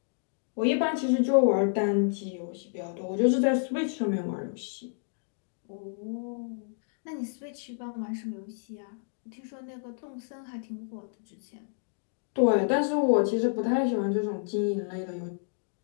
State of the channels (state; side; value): silent; right; digital silence